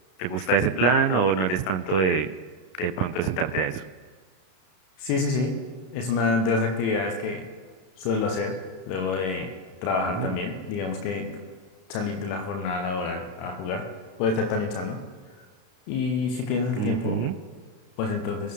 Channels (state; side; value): late; right; 32 ms